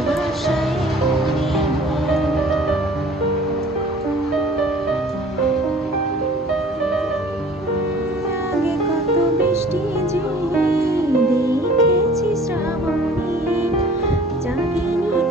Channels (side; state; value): both; normal; correlation 0.50